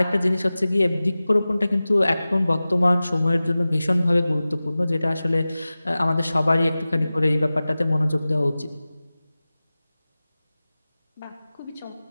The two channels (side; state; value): both; inverted; correlation -0.97